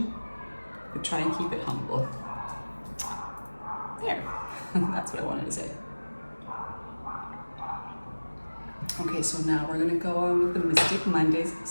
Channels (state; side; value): inverted; both; correlation -1.00